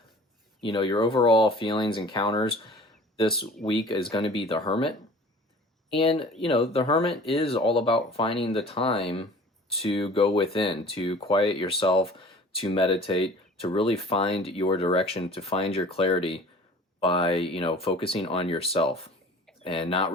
your overall feelings, encounters. This week is going to be the Hermit. And, the Hermit is all about finding the time to go within, to quiet yourself, to meditate, to really find your direction, to find your clarity by, focusing on yourself and not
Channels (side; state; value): both; normal; correlation 0.45